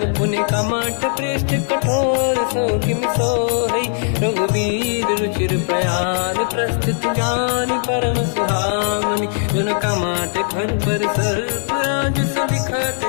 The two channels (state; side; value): silent; right; 67 dB below the other